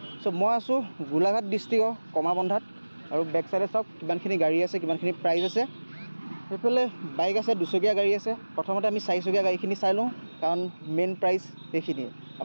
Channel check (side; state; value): both; inverted; correlation -1.00